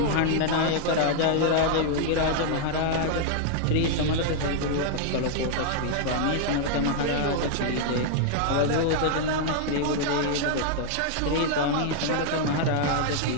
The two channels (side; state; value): both; different; correlation 0.00